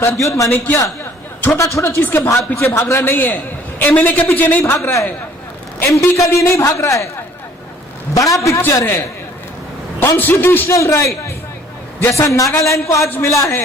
माणिक्य छोटा छोटा चीज के पीछे भाग रहा नहीं है, एमएलए के पीछे नहीं भाग रहा है, एमपी के लिए नहीं भाग रहा है। बड़ा पिक्चर है कॉन्स्टिट्यूशनल राइट। जैसा नागालैंड को आज मिला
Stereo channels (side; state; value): both; normal; correlation 0.56